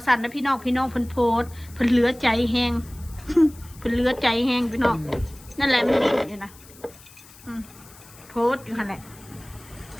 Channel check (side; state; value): left; noise; hiss, 22 dB below the sound